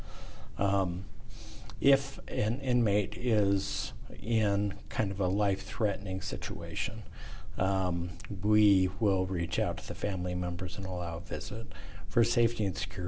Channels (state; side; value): identical; both; correlation 1.00